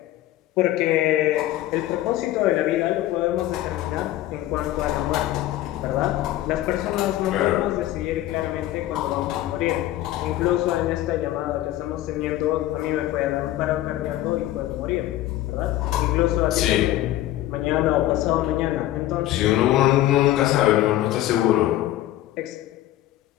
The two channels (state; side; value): quieter; right; 14.5 dB